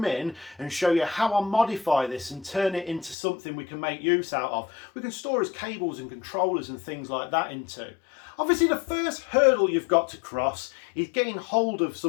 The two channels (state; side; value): drops out; right; at 3.2 s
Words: in and show you how I modify this and turn it into something we can make use out of. We can store as cables and controllers and things like that into. Obviously, the first hurdle you've got to cross is getting hold of